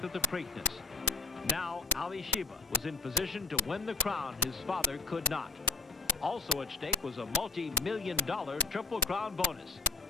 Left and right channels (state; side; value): quieter; right; 3.7 dB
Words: at the Preakness. Now, Ali Sheba was in position to win the crown his father could not. Also at stake was a multi-million-dollar Triple Crown bonus.